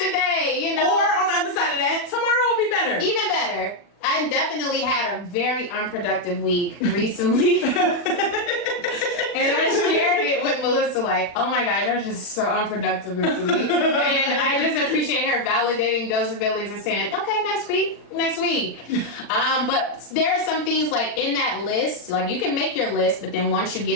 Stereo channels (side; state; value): right; late; 40 ms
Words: today, Or on the other side of that, tomorrow will be better. Even better. I definitely had a very unproductive week recently. And I shared it with Melissa, oh my gosh, I was just so unproductive this week. And I just appreciate her validating those abilities and saying, okay, next week. But there are some things in that list, you can make your list, but then once you